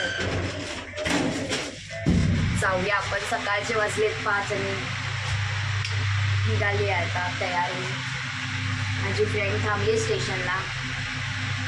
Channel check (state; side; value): identical; both; correlation 1.00